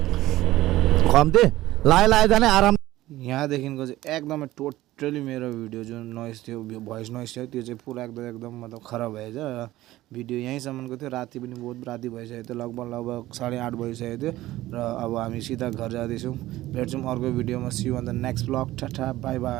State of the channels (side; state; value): left; quieter; 16.2 dB